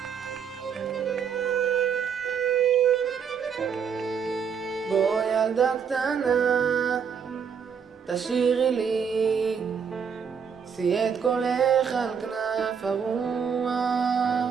בוא ילדה קטנה, תשאירי לי, שאי את קולך על כנף הרוח.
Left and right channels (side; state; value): left; quieter; 6.9 dB